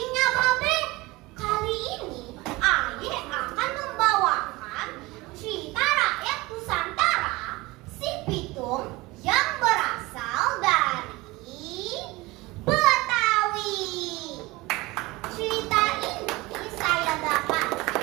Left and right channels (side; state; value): left; quieter; 21.5 dB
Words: babe, kali ini Aye akan membawakan cerita rakyat Nusantara si Pitung yang berasal dari Betawi. Cerita ini saya